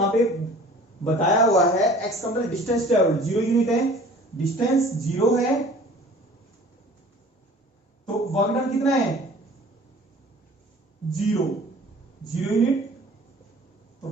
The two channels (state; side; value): normal; both; correlation 0.47